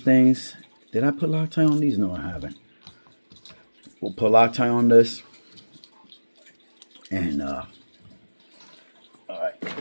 things. Did I put Loctite on these? No, I haven't. We'll put Loctite on this. And, all right.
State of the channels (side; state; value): both; inverted; correlation -1.00